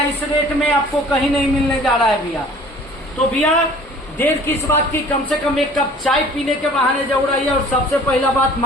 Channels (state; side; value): normal; both; correlation 0.49